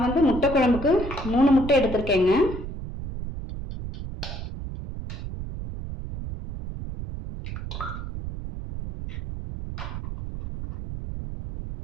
வந்து முட்டை குழம்புக்கு 3 முட்டை எடுத்திருக்கேங்க.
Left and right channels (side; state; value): right; noise; rumble, 8 dB below the sound